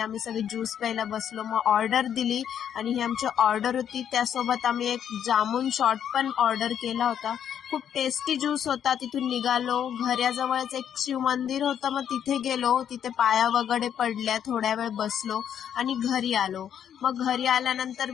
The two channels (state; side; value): quieter; right; 9.1 dB